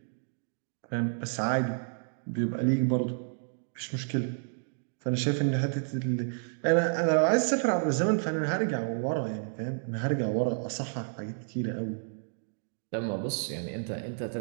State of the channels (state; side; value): silent; left; digital silence